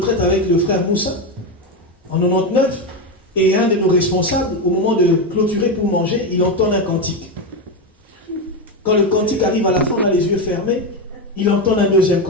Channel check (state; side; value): normal; both; correlation 0.12